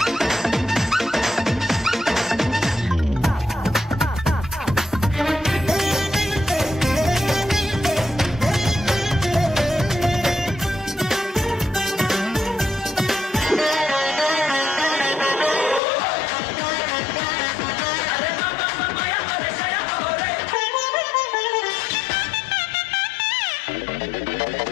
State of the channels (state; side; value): drops out; right; at 15.8 s